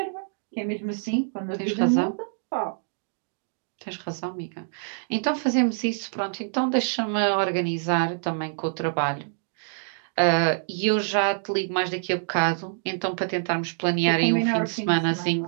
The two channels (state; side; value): silent; left; digital silence